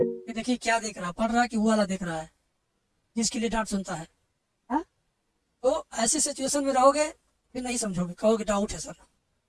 देखिए क्या देख रहा है, पढ़ रहा है कि वो वाला देख रहा है जिसके लिए डांट सुनता है, हाँ? तो ऐसी सिचुएशन में रहोगे फिर नहीं समझोगे, कहोगे डाउट है सर।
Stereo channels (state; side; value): identical; both; correlation 1.00